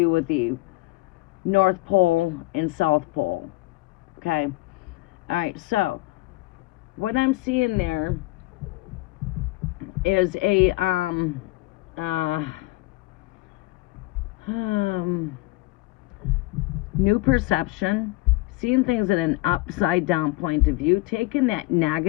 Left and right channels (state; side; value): quieter; right; 21.0 dB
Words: with the North Pole and South Pole. Okay? All right, so what I'm seeing there is a new perception, seeing things at an upside down point of view, taking that